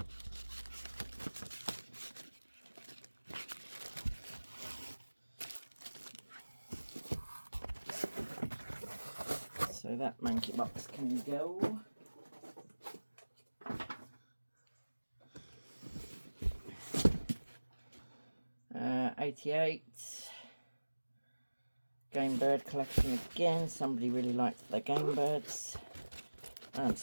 So that monkey box can go. 88. Game bird collection again. Somebody really liked their game birds. I'm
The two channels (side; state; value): both; inverted; correlation -1.00